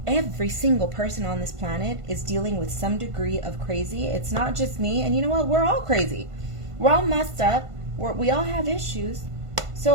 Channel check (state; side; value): late; left; 1.5 ms